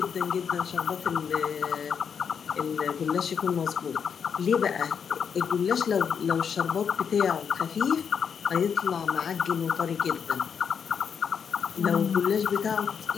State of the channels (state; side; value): quieter; right; 7.0 dB